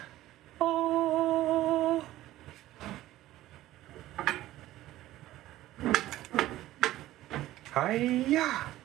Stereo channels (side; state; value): left; quieter; 15.2 dB